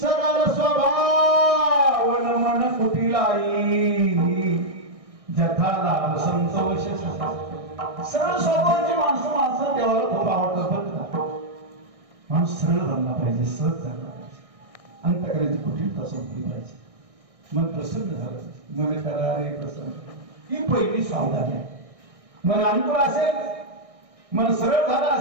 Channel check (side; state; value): left; late; 1.6 ms